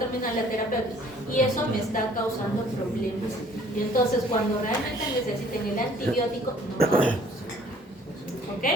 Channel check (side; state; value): both; normal; correlation 0.56